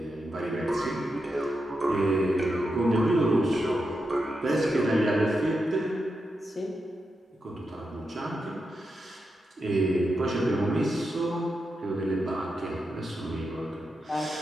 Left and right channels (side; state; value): both; normal; correlation 0.87